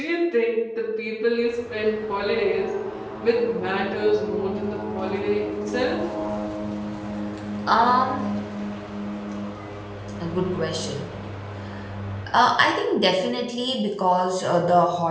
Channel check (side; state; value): both; identical; correlation 1.00